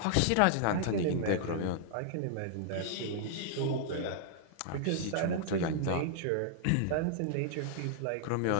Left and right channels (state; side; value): different; both; correlation -0.01